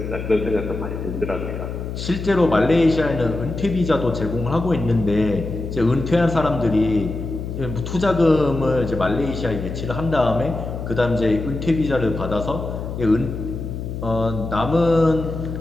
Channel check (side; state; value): left; noise; hum, 6 dB below the sound